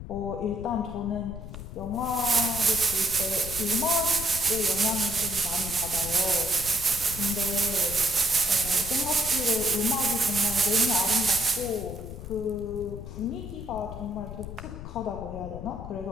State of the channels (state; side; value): noise; left; rumble, 10 dB below the sound